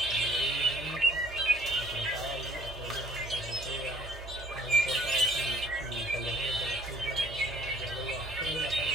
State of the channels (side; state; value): both; normal; correlation 0.58